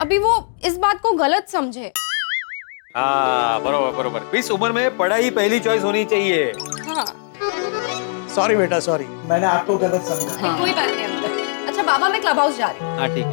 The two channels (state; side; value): silent; right; digital silence